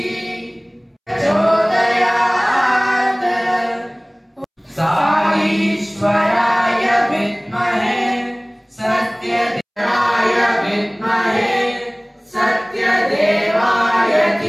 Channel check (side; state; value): both; identical; correlation 1.00